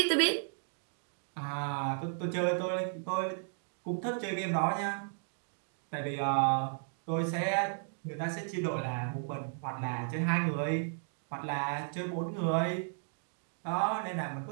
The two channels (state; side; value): silent; left; digital silence